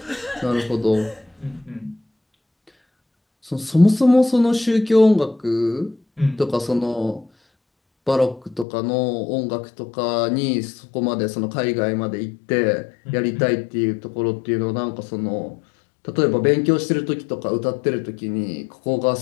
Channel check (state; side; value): drops out; right; at 8.7 s